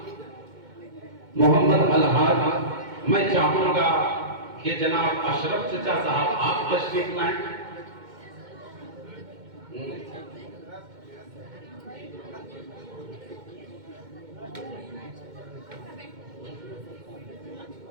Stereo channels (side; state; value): left; late; 2.1 ms